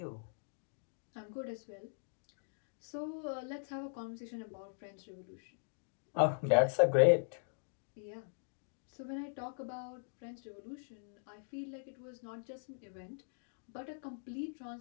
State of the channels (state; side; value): silent; right; digital silence